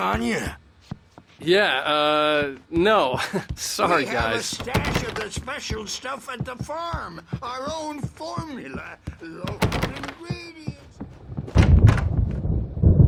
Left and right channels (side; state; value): both; identical; correlation 1.00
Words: you? Yeah, no. Sorry, we have a guys. stash of the special stuff at the farm. Our own formula. Local ingredients.